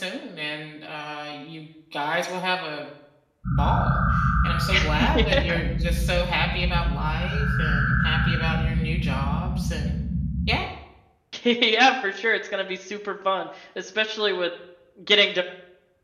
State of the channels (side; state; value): both; identical; correlation 1.00